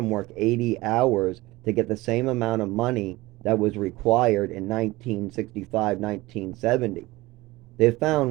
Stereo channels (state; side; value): quieter; left; 20.1 dB